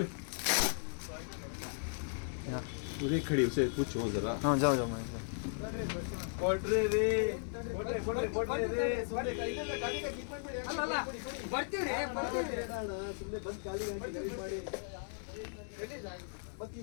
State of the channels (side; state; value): right; silent; digital silence